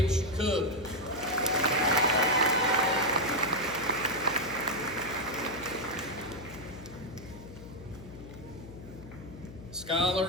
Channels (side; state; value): left; noise; hum, 15 dB below the sound